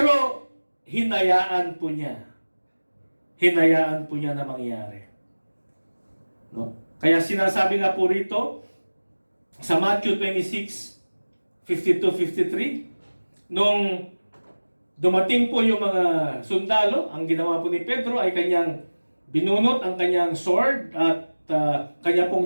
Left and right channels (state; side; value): inverted; both; correlation -1.00